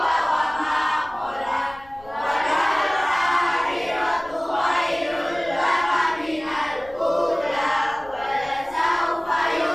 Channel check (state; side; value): noise; left; rumble, 25 dB below the sound